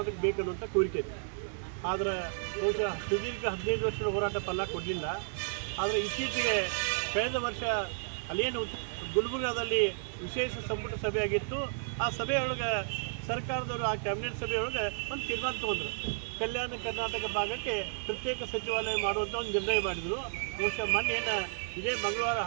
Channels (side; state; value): left; silent; digital silence